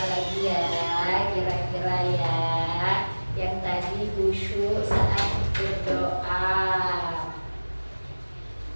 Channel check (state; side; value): inverted; both; correlation -1.00